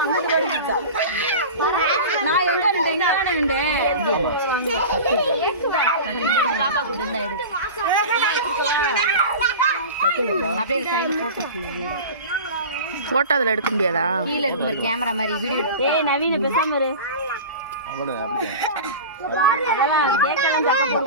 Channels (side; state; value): both; inverted; correlation -0.32